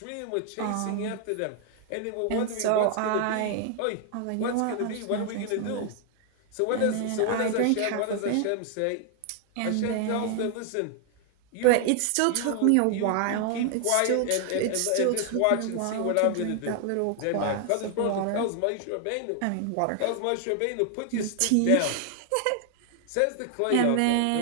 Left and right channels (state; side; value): different; both; correlation 0.00